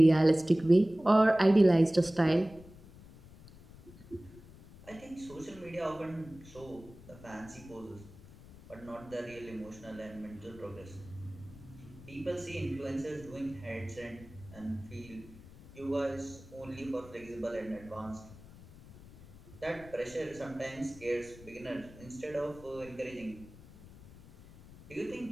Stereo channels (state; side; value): noise; left; rumble, 19 dB below the sound